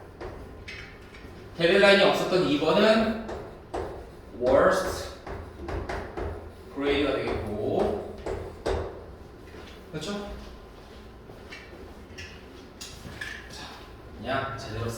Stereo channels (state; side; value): identical; both; correlation 1.00